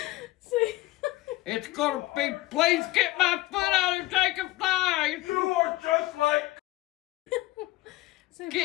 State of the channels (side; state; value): right; quieter; 18.3 dB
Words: Say. It's gonna be, please get my foot out and take a flight. You are just like. Say